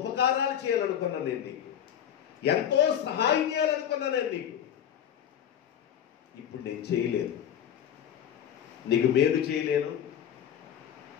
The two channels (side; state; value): right; quieter; 9.6 dB